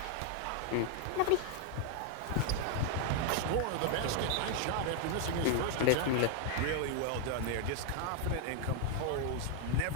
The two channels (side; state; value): both; different; correlation 0.00